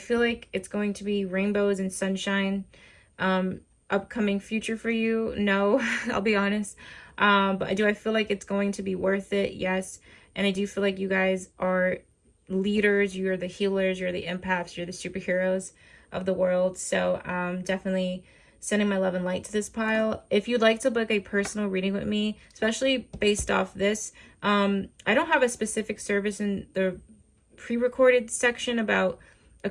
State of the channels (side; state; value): both; identical; correlation 1.00